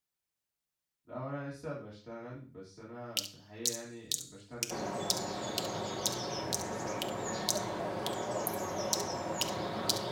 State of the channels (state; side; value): identical; both; correlation 1.00